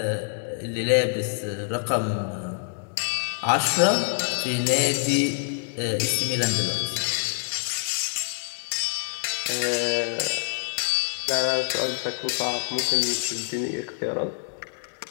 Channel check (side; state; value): right; silent; 61 dB below the other